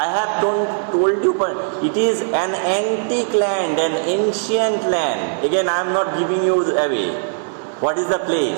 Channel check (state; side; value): silent; left; digital silence